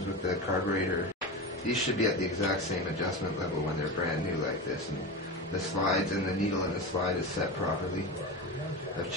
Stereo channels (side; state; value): both; normal; correlation 0.23